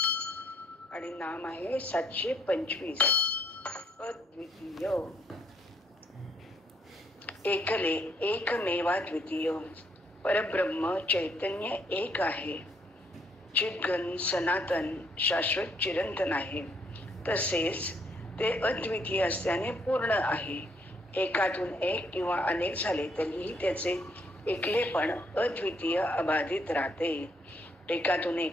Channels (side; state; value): both; normal; correlation 0.70